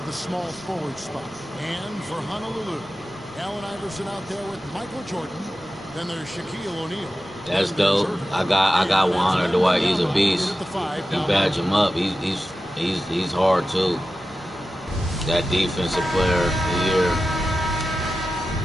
the small forward spot. And for Honolulu, Allen Iverson out there with Michael Jordan. Then there's Shaquille O'Neal. That's dope. I got Juan Dwight. He's a beast. You badge him up. He's hard too. That defensive player of the year.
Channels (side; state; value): both; normal; correlation 0.93